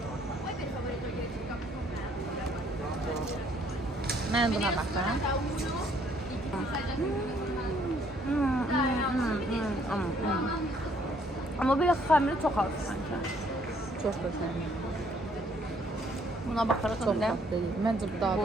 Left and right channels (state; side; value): normal; both; correlation 0.64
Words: Ben buna bakıyorum. Amma belə xəmiri çox az sanki. Çok güzel. Buna baxaraq Çok öndə tatlı değil. Bence bu daha bu